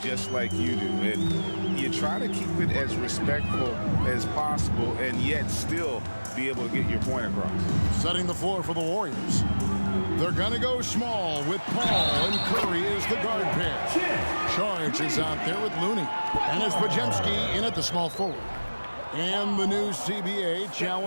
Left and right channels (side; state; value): both; inverted; correlation -1.00